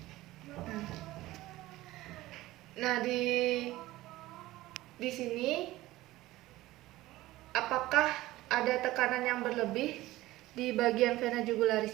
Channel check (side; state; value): left; quieter; 17.3 dB